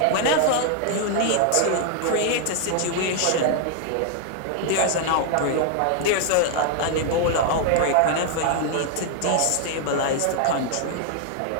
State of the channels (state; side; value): different; both; correlation 0.00